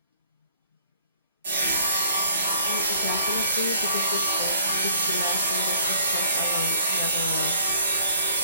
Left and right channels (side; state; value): both; inverted; correlation -0.58